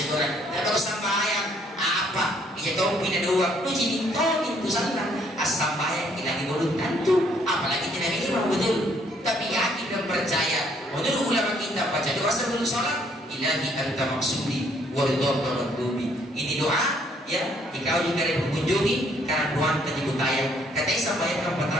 orang, tidak tahu sambayang apa? Ia tahu pindah dua, lu jadi tahu itu salah. Sambayang kita dibodoh tentu, apalagi tidak imam, betul. Tapi yakin dan percaya. Menurut ulama kita baca doa sebelum sholat, ilahi anta maksudi waridhaka madlubi. Ini doa ya, jika juga ada mengunjungi karena doa tersebut tayang. Katanya sampai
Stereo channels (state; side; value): normal; both; correlation 0.66